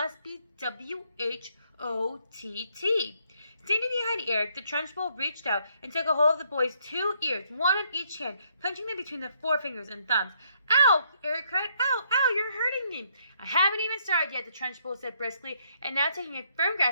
be W-H-O-T-T." Standing behind Eric, the Trunchbull reached out and took a hold of the boy's 2 ears, one in each hand, punching them between the forefingers and thumbs. "Ow!" Eric cried. "Ow! Ow! You're hurting me!" "I haven't even started yet," the Trunchbull said briskly, and now taking a firm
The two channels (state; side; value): inverted; both; correlation -0.71